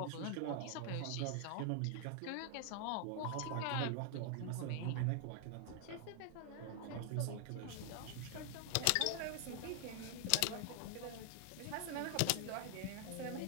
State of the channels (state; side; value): different; both; correlation 0.00